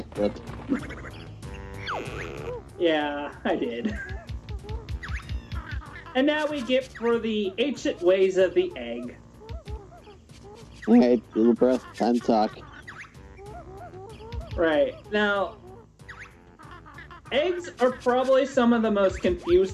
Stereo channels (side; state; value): both; identical; correlation 1.00